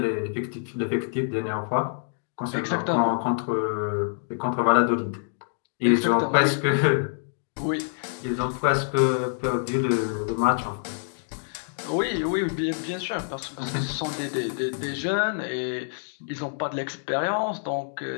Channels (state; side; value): silent; right; digital silence